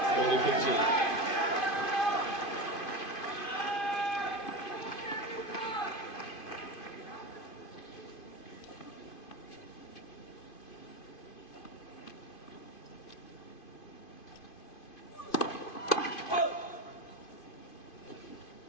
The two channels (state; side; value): late; right; 2.5 ms